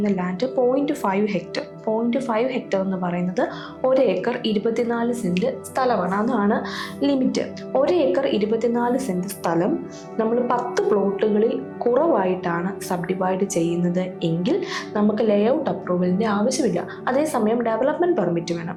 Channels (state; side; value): identical; both; correlation 1.00